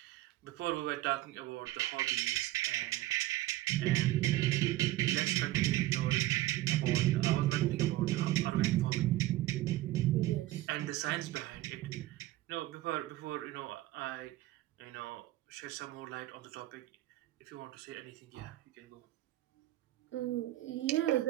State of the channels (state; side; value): quieter; left; 16.1 dB